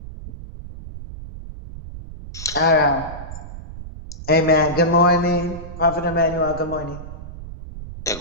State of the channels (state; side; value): noise; right; rumble, 12 dB below the sound